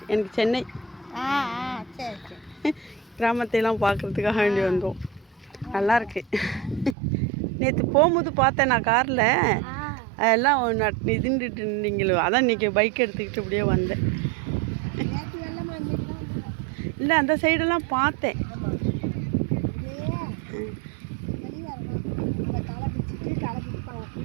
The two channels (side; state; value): left; drops out; at 7.0 s